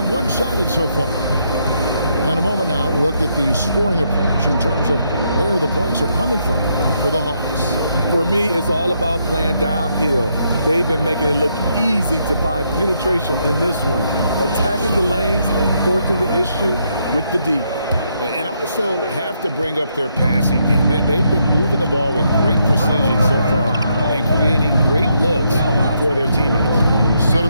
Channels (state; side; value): inverted; both; correlation -0.76